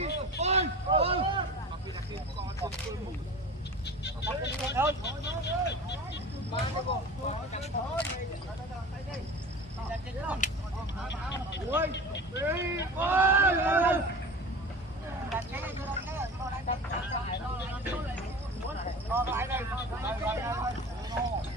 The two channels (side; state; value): both; normal; correlation 0.36